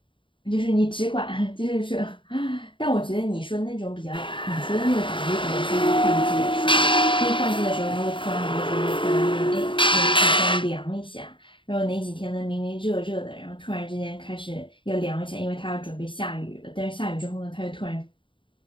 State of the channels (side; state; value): right; late; 0.24 ms